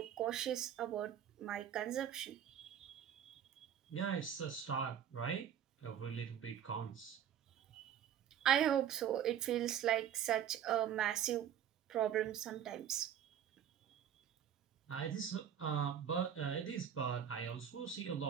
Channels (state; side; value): quieter; left; 9.4 dB